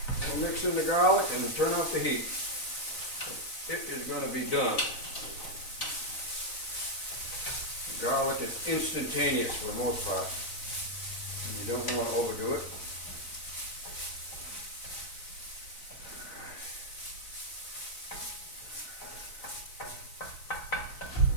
We'll mix in the garlic and turn off the heat. It is going to be done. Garlic is instantaneous for the most part. And you don't want to overdo it.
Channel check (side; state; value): right; late; 3.9 ms